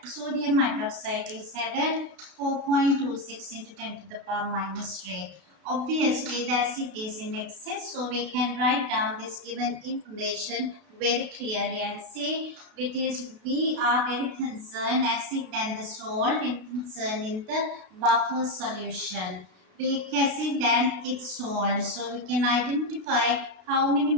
sodium hydroxide is added 4.26 into 10 to the power minus 3. Obviously, the acid is in excess, so we can write down this given information very clearly and say it is we are very concerned acid and the salt in concern in the buffer solution. Weak acid and its salt, so we can identify how many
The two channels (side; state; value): left; late; 32 ms